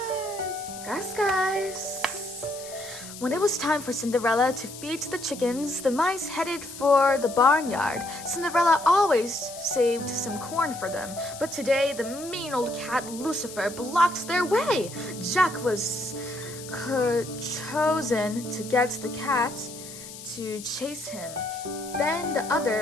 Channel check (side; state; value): left; noise; hiss, 13 dB below the sound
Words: Gus. When it was time for Cinderella to feed the chickens, the mice headed for the barnyard. Cinderella always saved some corn for them, but today the mean old cat Lucifer blocked their way. Jack was chosen to get the cat to chase him. Then the